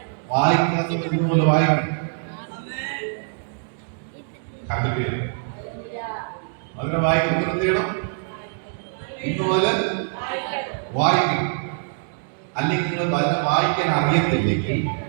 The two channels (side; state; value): left; silent; 63 dB below the other